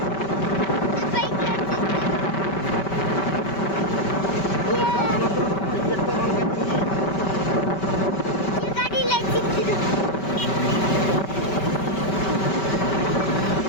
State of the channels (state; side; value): late; right; 5.2 ms